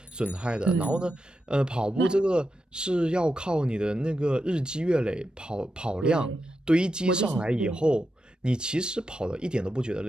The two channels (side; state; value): both; normal; correlation 0.88